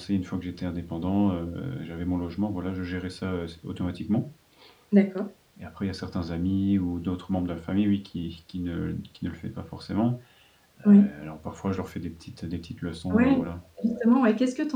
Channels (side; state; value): both; identical; correlation 1.00